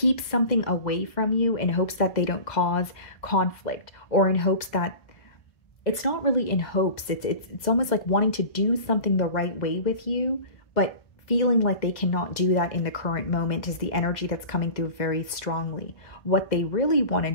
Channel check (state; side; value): late; right; 2.0 ms